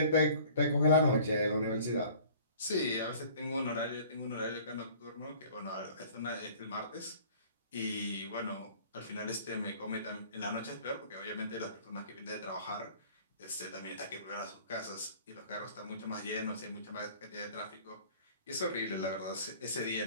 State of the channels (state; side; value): inverted; both; correlation -0.49